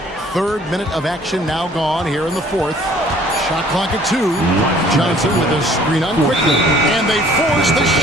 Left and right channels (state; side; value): normal; both; correlation 0.56